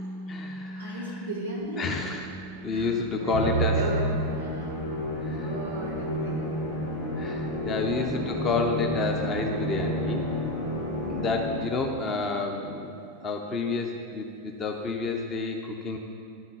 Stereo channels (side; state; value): both; normal; correlation 0.11